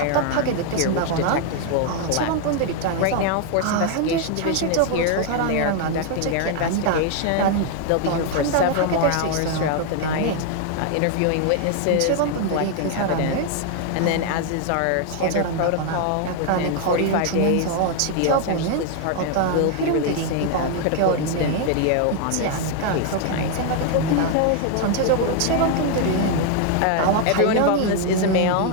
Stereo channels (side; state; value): both; different; correlation 0.00